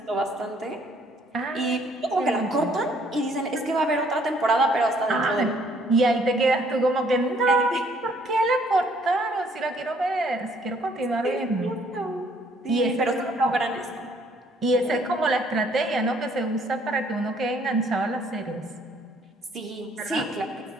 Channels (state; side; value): normal; both; correlation 0.63